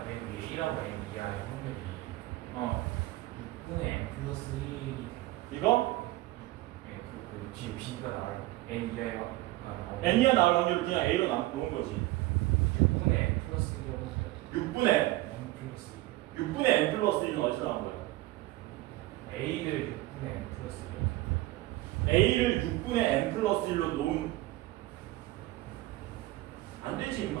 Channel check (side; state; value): left; quieter; 18.3 dB